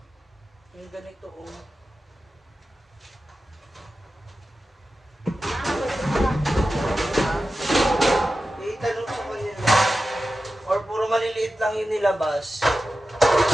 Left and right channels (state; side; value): normal; both; correlation 0.93